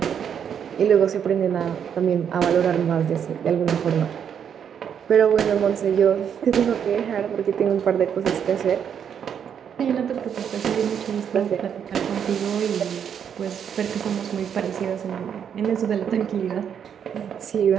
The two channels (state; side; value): quieter; left; 8.1 dB